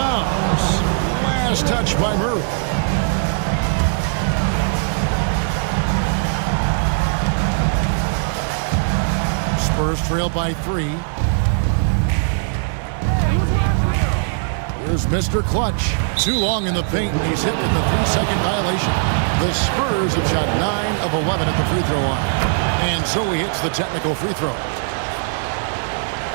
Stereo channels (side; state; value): left; silent; 61 dB below the other